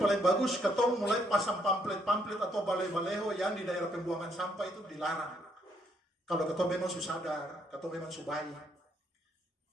bagus ketong mulai pasang pamflet atau balai-baleho yang di daerah pembuangan sampah itu dilarang. Kalau ketong memang sadar, ketong memang baik.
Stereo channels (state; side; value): normal; both; correlation 0.71